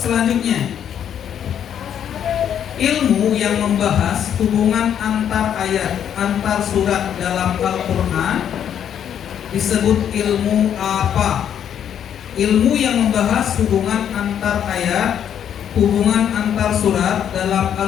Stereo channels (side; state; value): right; quieter; 9.2 dB